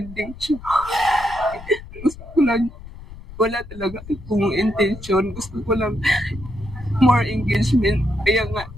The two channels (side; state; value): left; noise; rumble, 15 dB below the sound